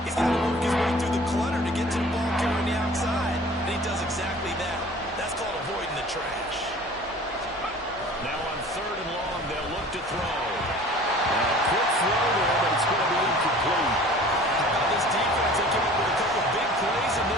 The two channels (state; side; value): normal; both; correlation 0.46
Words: He's got to work his way through the clutter to get to the ball carrier on the outside, and he does exactly that. That's called avoiding the trash. Now on 3rd and long, they'll look to throw. And a quick throw there, but it's going to be incomplete. How about this defense? They came up with a couple big plays in